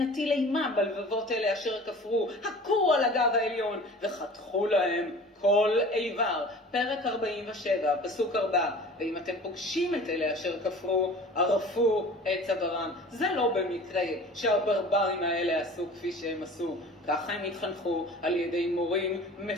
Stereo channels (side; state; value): both; normal; correlation 0.43